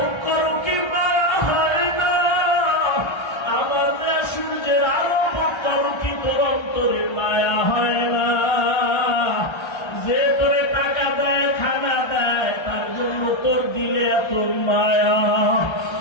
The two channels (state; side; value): late; right; 1.3 ms